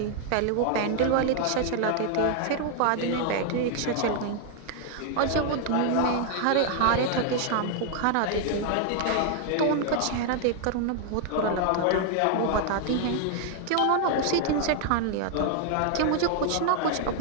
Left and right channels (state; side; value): different; both; correlation 0.00